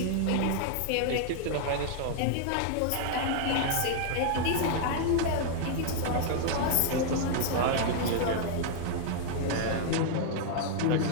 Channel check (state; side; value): different; both; correlation 0.00